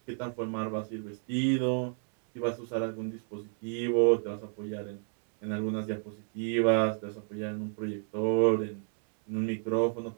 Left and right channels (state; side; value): silent; left; 57 dB below the other